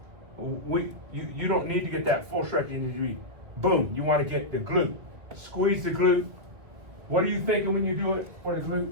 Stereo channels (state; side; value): late; left; 1.7 ms